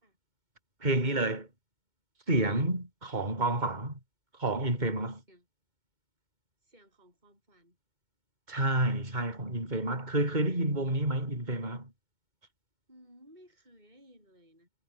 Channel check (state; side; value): late; left; 2.2 ms